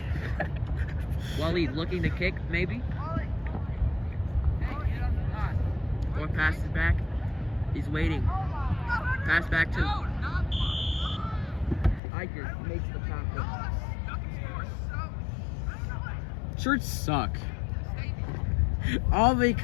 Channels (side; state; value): right; drops out; at 12.0 s